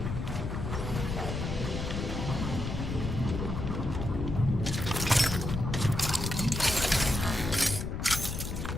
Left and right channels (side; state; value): left; noise; rumble, 3 dB below the sound